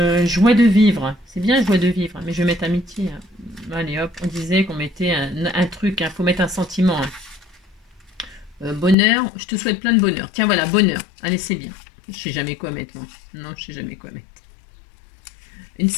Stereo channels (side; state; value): right; drops out; at 9.0 s